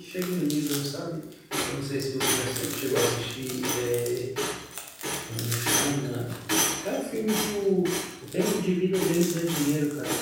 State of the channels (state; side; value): identical; both; correlation 1.00